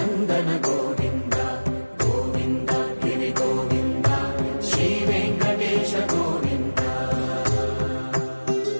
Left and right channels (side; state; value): both; inverted; correlation -1.00